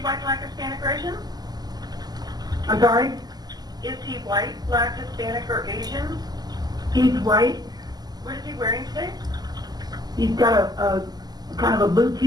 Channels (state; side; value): late; left; 0.20 ms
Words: white, black, Hispanic, or Asian? I'm sorry? Is he white, black, Hispanic, or Asian? He's white. What is he wearing today? He's got a kind of a blue